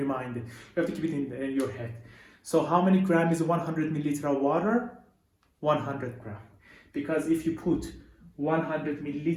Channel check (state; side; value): identical; both; correlation 1.00